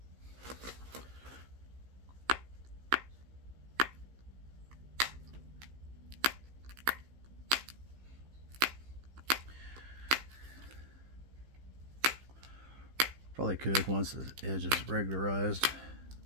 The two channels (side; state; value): left; late; 15 ms